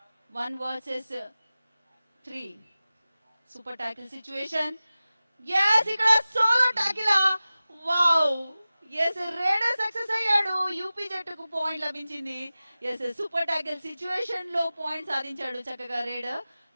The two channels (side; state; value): both; inverted; correlation -0.96